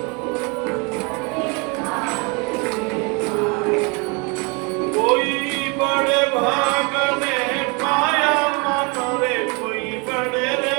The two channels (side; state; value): left; quieter; 30.8 dB